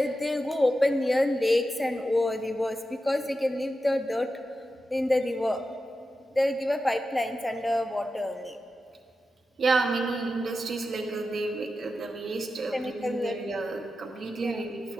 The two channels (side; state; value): both; normal; correlation 0.91